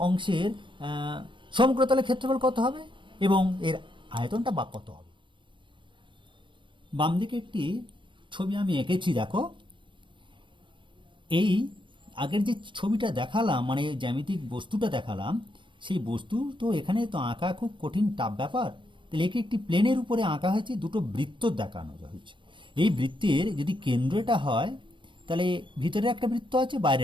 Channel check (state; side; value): late; left; 0.24 ms